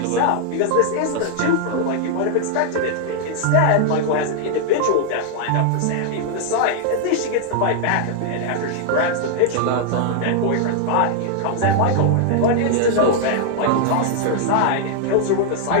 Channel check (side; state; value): both; different; correlation -0.01